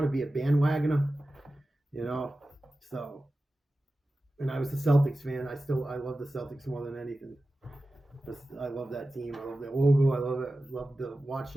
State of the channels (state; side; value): normal; both; correlation 0.94